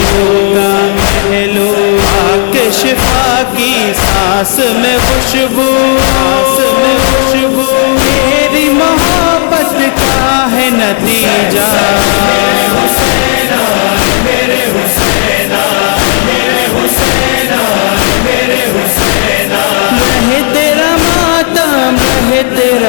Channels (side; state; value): right; silent; 59 dB below the other